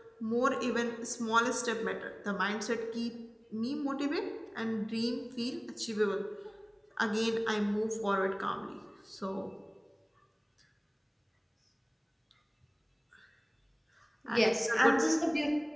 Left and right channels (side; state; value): both; identical; correlation 1.00